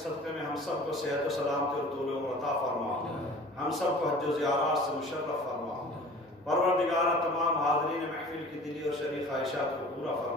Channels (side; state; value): both; normal; correlation 0.44